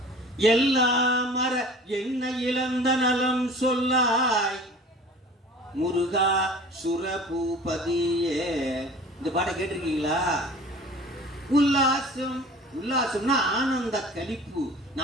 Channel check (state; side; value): normal; both; correlation 0.43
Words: எல்லா மர என்ன இழந்த நலம் சொல்லாய் முருகா சுரபூபதியே. இந்த பாட்டை கேட்டிருக்கீங்களா? உல்லாசம், உல்லாசம்னா ஆனந்த கழிப்பு.